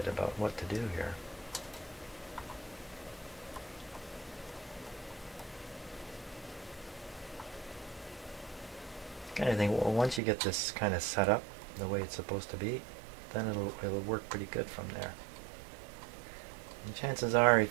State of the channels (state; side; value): drops out; left; at 10.2 s